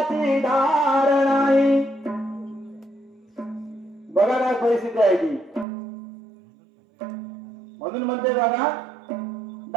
धार नाही बघा काय परिस्थिती आहे ती म्हणून म्हणते बघा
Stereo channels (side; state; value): left; drops out; at 5.7 s